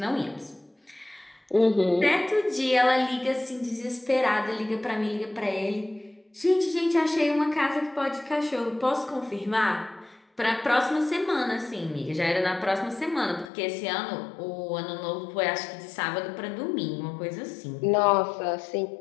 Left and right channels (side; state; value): right; drops out; at 13.5 s